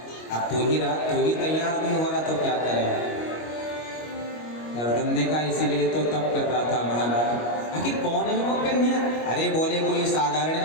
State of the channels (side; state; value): right; late; 25 ms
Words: अब तू ही तैयार नहीं हो रहा तो क्या करें? कर्दम ने कहा इसीलिए तो तप कर रहा था महाराज। आखिर कौन है वो कन्या? अरे बोले कोई साधारण